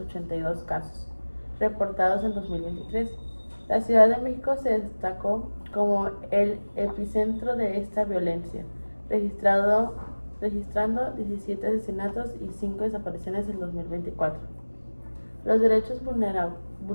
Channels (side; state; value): both; inverted; correlation -1.00